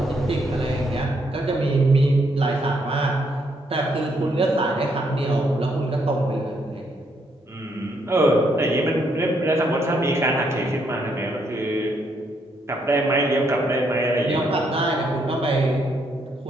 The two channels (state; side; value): normal; both; correlation 0.74